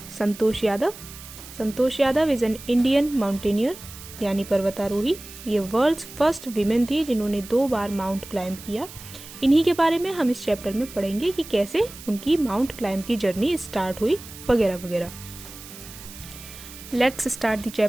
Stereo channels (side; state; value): right; noise; hiss, 16 dB below the sound